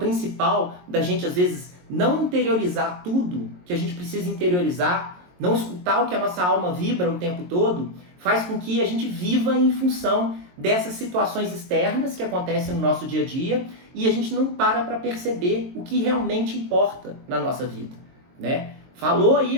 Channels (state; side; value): late; left; 22 ms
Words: da gente às vezes não interiorizar tudo que a gente precisa interiorizar, não escutar o que a nossa alma vibra o tempo todo, faz com que a gente viva em função dessas situações externas que acontecem no nosso dia a dia e a gente não para perceber o que realmente importa na nossa vida, né? Falou